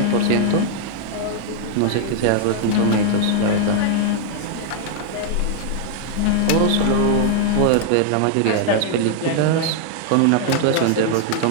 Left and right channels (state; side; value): different; both; correlation -0.01